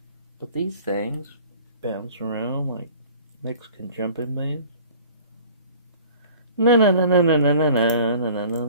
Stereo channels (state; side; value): inverted; both; correlation -0.48